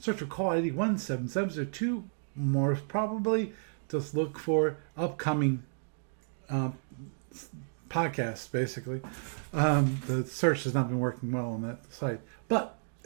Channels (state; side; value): silent; left; digital silence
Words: Search for call ID 17702. More probably, just look for upcoming podcasts, basically. The search has not been working well on that site. But